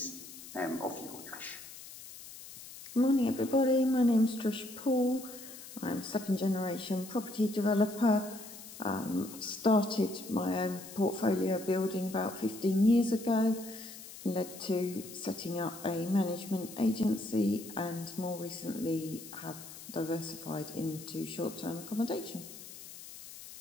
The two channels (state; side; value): noise; left; hiss, 15 dB below the sound